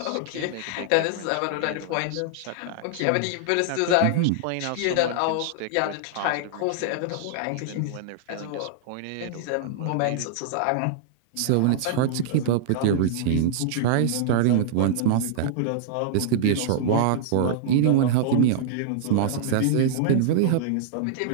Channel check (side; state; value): both; different; correlation -0.01